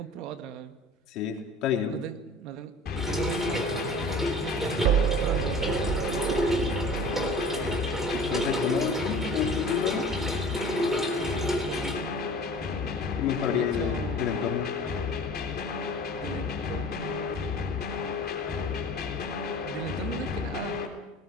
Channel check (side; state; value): both; normal; correlation 0.43